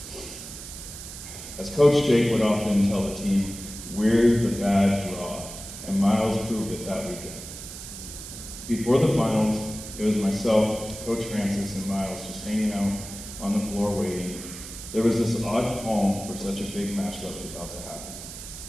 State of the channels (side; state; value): right; noise; hiss, 11 dB below the sound